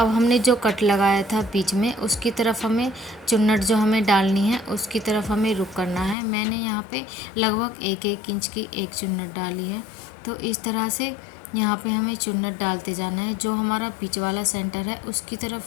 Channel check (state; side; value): drops out; right; at 6.2 s